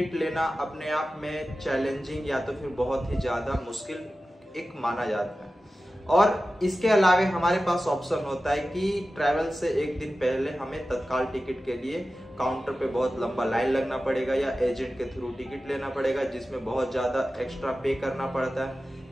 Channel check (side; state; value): both; normal; correlation 0.94